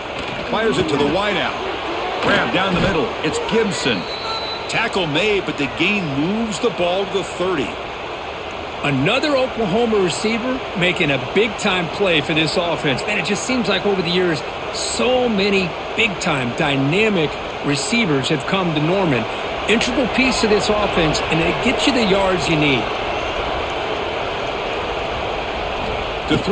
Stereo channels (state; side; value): identical; both; correlation 1.00